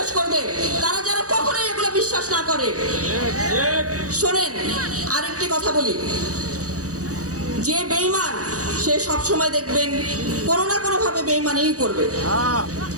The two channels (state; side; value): late; left; 0.66 ms